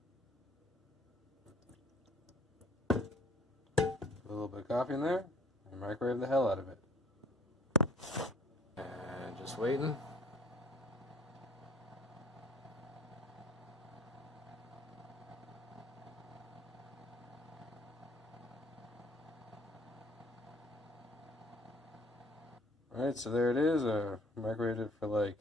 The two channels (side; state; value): both; normal; correlation 0.55